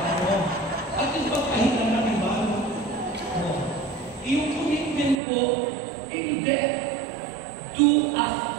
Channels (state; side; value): drops out; left; at 5.2 s